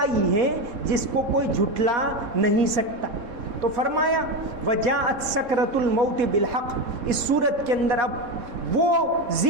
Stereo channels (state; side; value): late; left; 3.7 ms